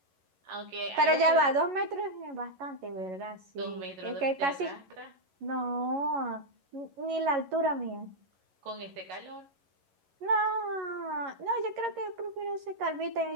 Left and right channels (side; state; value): left; late; 11 ms